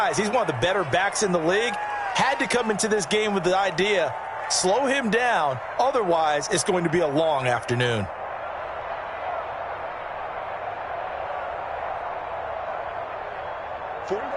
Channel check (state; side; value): identical; both; correlation 1.00